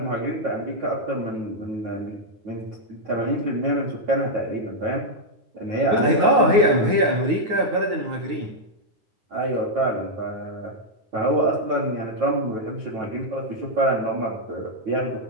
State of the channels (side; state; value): left; late; 9.6 ms